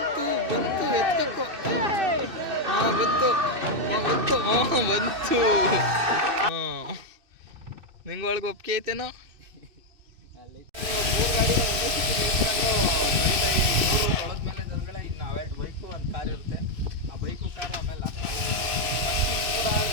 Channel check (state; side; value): late; left; 2.6 ms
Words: ಬಂತು. ನಿಂಗೆ ಒಳಗೆ ಒಪ್ಪಿಗೆ ಐತೇನೋ? 3 ಗಾಡಿನ ಒಂದೇ ಸಿಕ್ಕಿ ನಿಲ್ಸ್ಕೊಂಡು ತೊಳೆದ್ಮೇಲೆ ದೇವ್ರುಗಳೇ ಇನ್ನು ಅವೆರಡು ಬೈಕು ಒಂದು ಕಾರ್ ಇರುತ್ತೆ. ಆ ಬೈಕು ಕಾರು ಆಮೇಲೆ